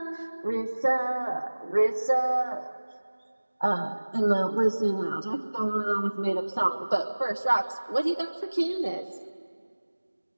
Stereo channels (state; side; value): inverted; both; correlation -1.00